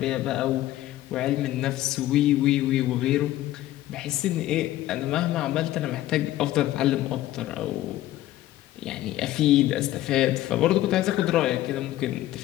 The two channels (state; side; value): quieter; right; 14.6 dB